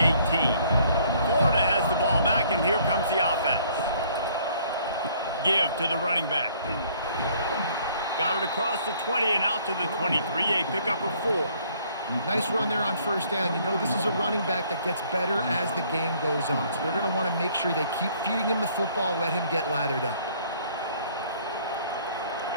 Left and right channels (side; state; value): both; inverted; correlation -0.61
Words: Florida has the ball back, and here comes the offense. Give to the running back. Got it across the 20 and out to the 23, a pickup of 4. Nice run there on first down. You know this is a running back that gets better as the game goes on. So they're going to want to make sure they keep feeding him the football, let him get lathered up.